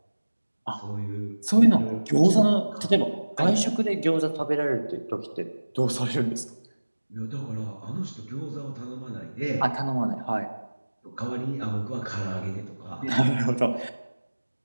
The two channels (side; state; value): both; inverted; correlation -1.00